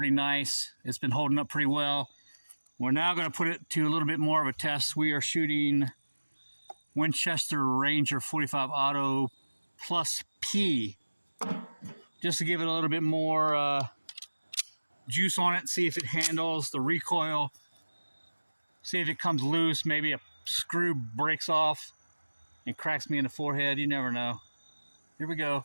nice. It's been holding up pretty well. We're now going to put it to a little bit more of a test. We are shooting Winchester Ranger 45 Auto plus P, just to give it a little bit more juice on it, see if it handles the recoil, see if it comes loose, maybe a screw breaks off and cracks me in the forehead. You never know. Here we go.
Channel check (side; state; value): both; inverted; correlation -1.00